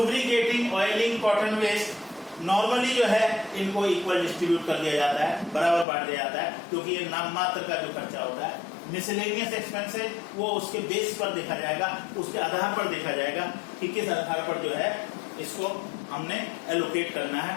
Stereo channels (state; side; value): drops out; right; at 5.9 s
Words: oiling, cotton waste, normally जो है इनको इक्वल डिस्ट्रीब्यूट कर दिया जाता है, बराबर बांट दिया जाता है, क्योंकि ये नाम मात्र का जो खर्चा होता है। मिसलेनियस एक्सपेंसेस वो उसके बेस पर देखा जाएगा, उसके आधार पर देखा जाएगा कि किस आधार पर जो है इसको हमने एलोकेट करना है,